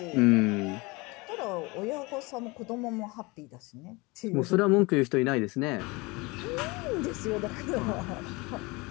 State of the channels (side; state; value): right; quieter; 25.2 dB